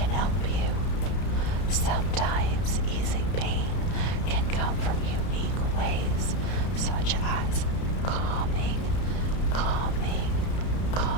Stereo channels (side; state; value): right; late; 33 ms